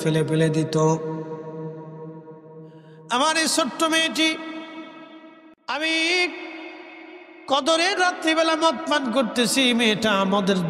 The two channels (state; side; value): identical; both; correlation 1.00